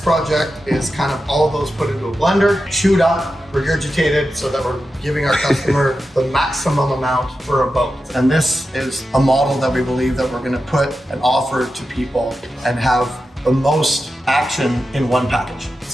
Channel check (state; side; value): normal; both; correlation 0.91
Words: is kind of all of those put into a blender, chewed up, regurgitated, so that we're giving our customer the maximum amount for a boat. And this is a model that we believe that we're going to put and offer to people and have the most action in one package.